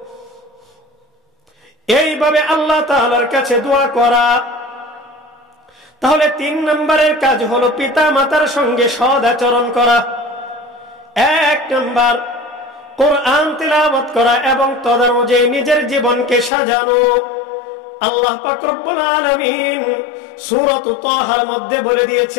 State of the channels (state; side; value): drops out; right; at 16.5 s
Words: এইভাবে আল্লাহ তাআলার কাছে দোয়া করা। তাহলে 3 নম্বরের কাজ হলো পিতা মাতার সঙ্গে সৎ আচরণ করা। 1 নম্বর কোরআন তিলাওয়াত করা এবং তদনুযায়ী নিজের জীবনকে সাজানো। আল্লাহ পাক রব্বুল আলামিন সূরাত তাহার মধ্যে বলে